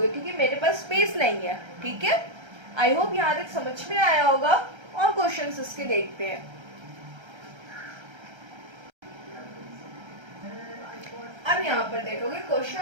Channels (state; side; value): late; left; 1.3 ms